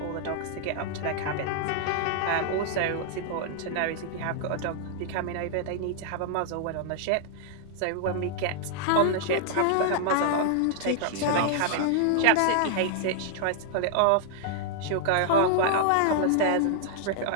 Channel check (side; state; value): both; different; correlation 0.00